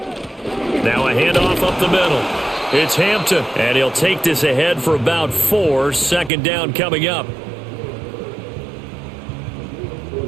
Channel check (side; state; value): left; drops out; at 6.3 s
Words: Now a handoff up the middle. It's Hampton, and he'll take this ahead for about 4. 2nd down coming up.